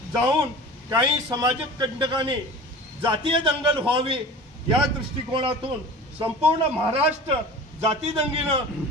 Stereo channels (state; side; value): normal; both; correlation 0.39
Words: जाऊन काही समाजिक कंटकांनी जातीय दंगल व्हावी या दृष्टिकोनातून संपूर्ण महाराष्ट्र जाती दंगीनं